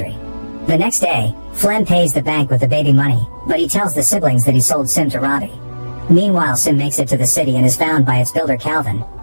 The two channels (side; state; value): both; inverted; correlation -1.00